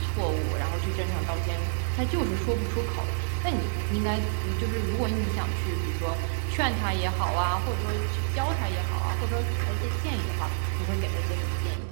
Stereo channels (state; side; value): silent; left; digital silence